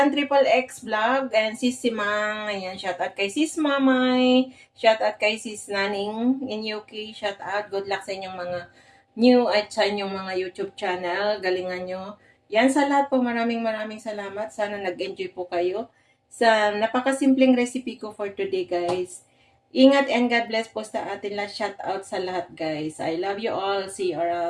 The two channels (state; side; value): identical; both; correlation 1.00